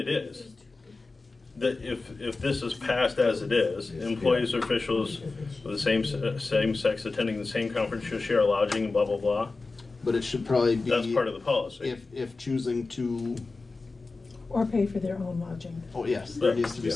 is. That if this is passed as it is, employees or officials of the same sex attending the same conference shall share lodging and blah, blah, blah. But it should probably be. That's part of the policy. If choosing to Or pay for their own lodging. Oh, yes, there needs to be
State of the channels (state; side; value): quieter; right; 3.8 dB